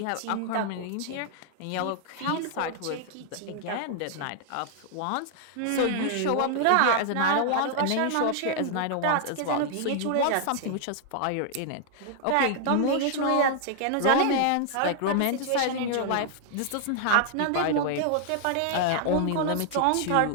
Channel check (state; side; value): different; both; correlation 0.00